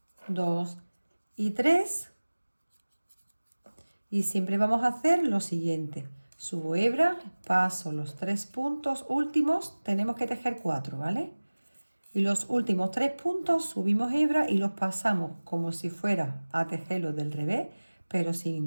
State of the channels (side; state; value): both; inverted; correlation -1.00